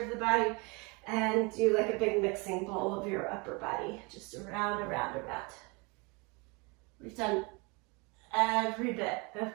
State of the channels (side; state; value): left; quieter; 29.4 dB